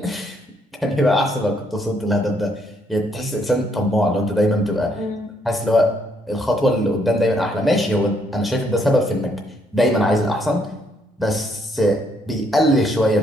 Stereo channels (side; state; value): both; normal; correlation 0.71